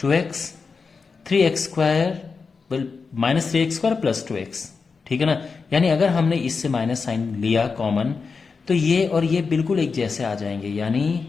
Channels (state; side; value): quieter; right; 4.9 dB